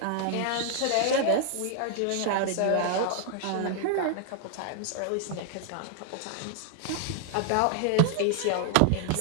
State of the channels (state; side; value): different; both; correlation 0.00